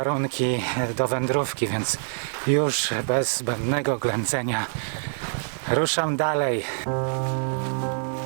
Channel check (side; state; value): left; silent; digital silence